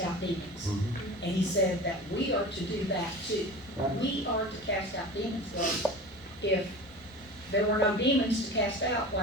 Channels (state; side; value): normal; both; correlation 0.34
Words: out demons. Mm-hmm. And he said that we are to do that too. Right. We are to cast out demons, God. If there were no demons to cast out,